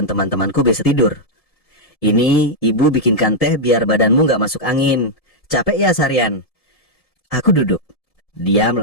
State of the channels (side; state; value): right; late; 1.7 ms